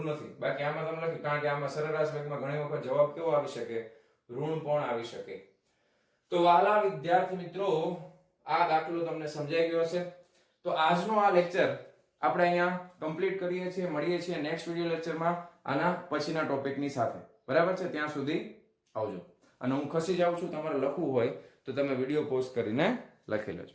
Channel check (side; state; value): both; identical; correlation 1.00